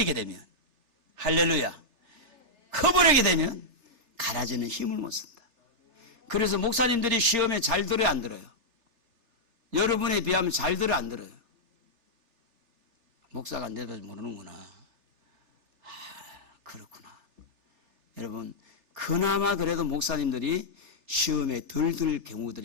되면, 할렐루야, 커버리게 되면 가라지는 힘을 못 쓴다. 그래서 목사님들이 시험에 잘 들어요, 안 들어요? 여러분에 비하면 잘 들어요, 안 들어요? 목사가 안 돼도 모르는구나. 그렇구나. 여러분, 그나마 그래도 목사님들이 시험에 덜 들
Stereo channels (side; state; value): left; late; 3.4 ms